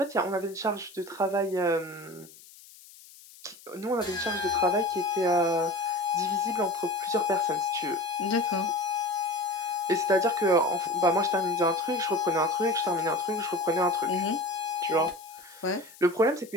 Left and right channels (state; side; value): noise; left; hiss, 21 dB below the sound